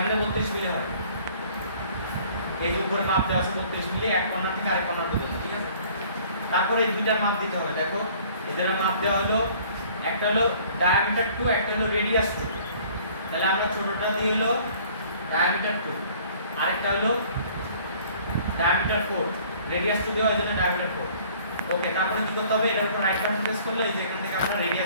32 মিলি হয় এই যে উপরে মাপ দেওয়া আছে 32 মিলি এক কর্নার থেকে আরেক কর্নার পর্যন্ত ঠিক আছে তারপরে এই দুইটার মাপ দিতে হবে দেখো এদের মাপ দেওয়া হলো একটা হলো ডায়ামিটার 2 একটা হলো রেডিয়াস 2 তাহলে আমরা ছোটটা দিয়ে হলো ডায়ামিটার 2 আরেকটা হলো ডায়ামিটার 4 রেডিয়াস 2 দেওয়ার জন্য ডায়ামিটার 4 ওকে তারপরে কি করতে হবে এর উপর রাইট বাটন প্রেস করলে এই যে এখান থেকে আমরা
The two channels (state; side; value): inverted; both; correlation -0.54